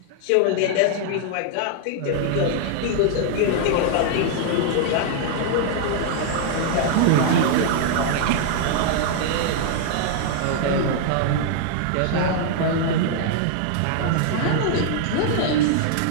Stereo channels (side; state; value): both; different; correlation -0.01